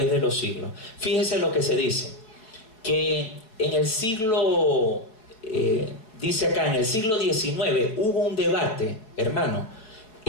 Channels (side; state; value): right; late; 4.7 ms